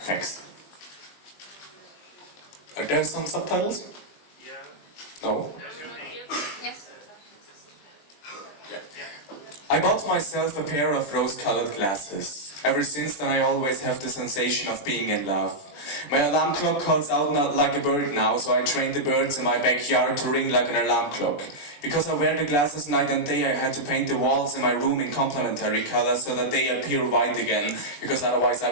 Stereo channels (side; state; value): right; late; 21 ms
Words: Thanks. Are there some subtitles? Yeah. No? Yes. I bought myself a pair of rose-colored glasses. Ever since then I always have the sensation of being in love. My alarm clock calls out not like a bird now, so I trained the birds in my backyard to ring like an alarm clock. Because I wear the glasses night and day, I had to paint the walls in my room in complementary colors so that they appear white again, because otherwise